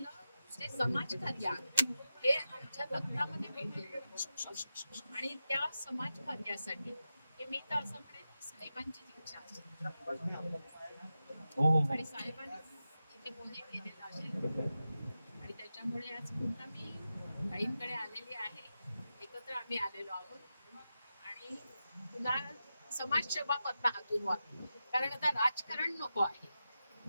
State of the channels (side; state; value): both; inverted; correlation -0.91